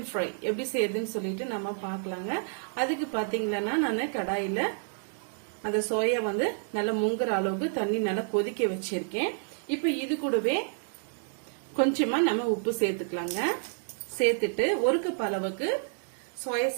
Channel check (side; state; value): left; silent; 58 dB below the other